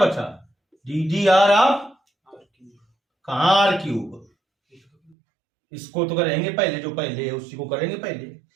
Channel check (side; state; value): left; drops out; at 5.2 s